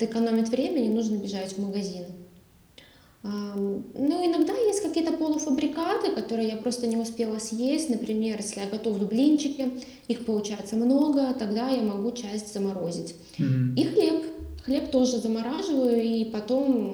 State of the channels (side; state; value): both; identical; correlation 1.00